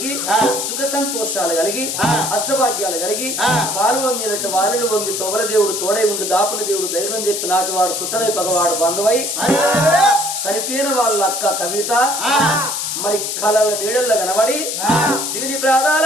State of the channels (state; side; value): noise; left; hiss, 3 dB below the sound